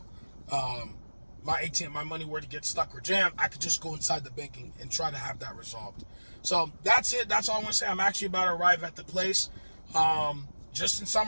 My ATM, my money were to get stuck or jammed, I could just go inside the banking and try to have that resolved. So that's it. That's all I want to say. I'm actually about to arrive at the place. Just in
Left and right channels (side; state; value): both; inverted; correlation -1.00